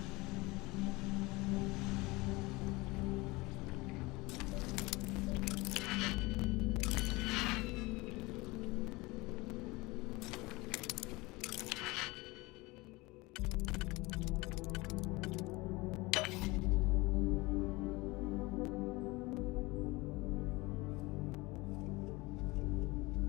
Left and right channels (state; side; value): quieter; right; 22.9 dB